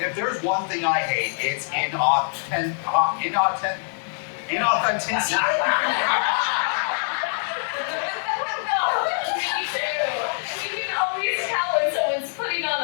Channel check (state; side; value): silent; right; digital silence